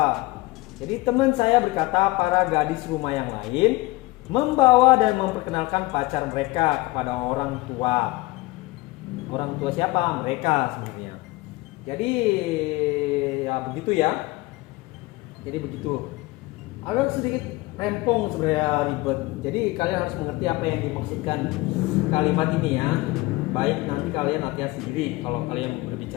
Jadi teman saya berkata para gadis rumah yang lain membawa dan memperkenalkan pacar mereka kepada orang tua. Orang tua siapa? Mereka sebenarnya. Jadi ya begitu ya. Jadi begitu. Agak sedikit rempong sebenarnya, ribet. Jadi kalian harus mengerti apa yang dimaksudkan kalimat ini ya. Baik nanti kalian latihan sendiri kalau kalian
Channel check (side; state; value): right; quieter; 21.1 dB